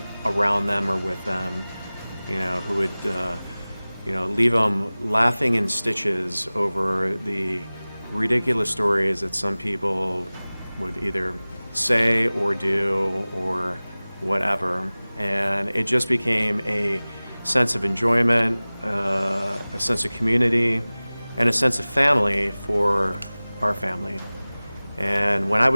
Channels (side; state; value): both; inverted; correlation -0.99